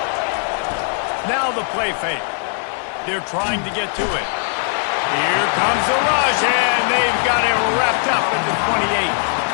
Now the play fake. They're trying to get to it. Here comes the rush, and they've got it wrapped up at the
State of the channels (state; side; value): silent; right; 55 dB below the other